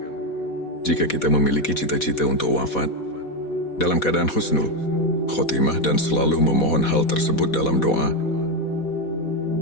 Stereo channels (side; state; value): right; late; 4.1 ms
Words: Jika kita memiliki cita-cita untuk wafat dalam keadaan husnul khotimah dan selalu memohon hal tersebut dalam doa,